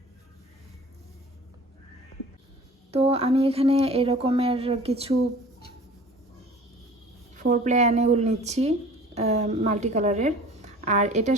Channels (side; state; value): both; normal; correlation 0.45